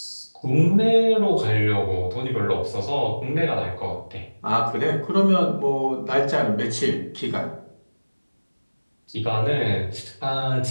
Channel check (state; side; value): inverted; both; correlation -1.00